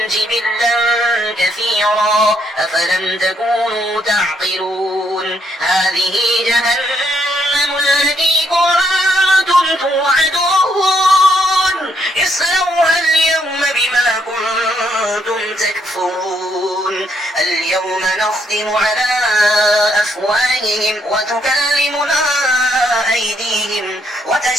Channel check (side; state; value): both; normal; correlation 0.73